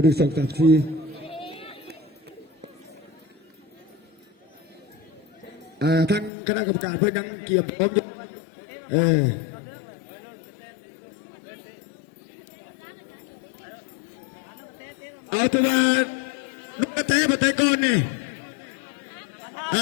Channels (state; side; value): drops out; right; at 6.3 s